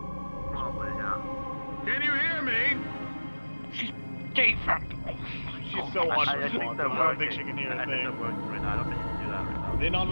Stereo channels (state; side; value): inverted; both; correlation -1.00